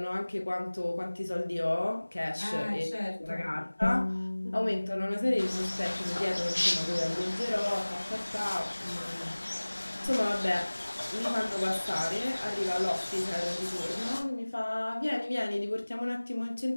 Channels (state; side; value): inverted; both; correlation -1.00